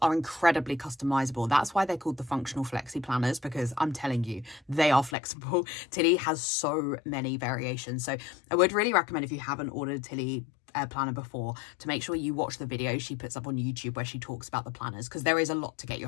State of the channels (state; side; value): drops out; right; at 5.2 s